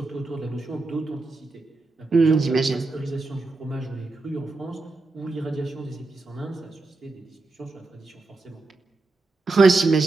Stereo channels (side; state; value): left; quieter; 3.5 dB